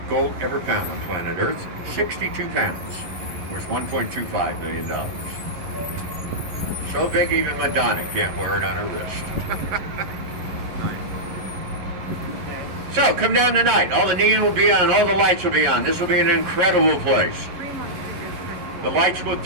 gold ever found on planet Earth, 62 pounds. Worth $1.25 million. So big even Madonna can't wear it on her wrist. So come down tonight. All the neon will be on, all the lights will be on. This will be an incredible place. The lights will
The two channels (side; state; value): left; late; 11 ms